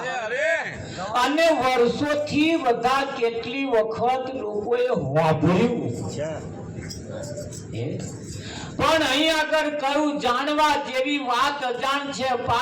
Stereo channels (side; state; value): both; identical; correlation 1.00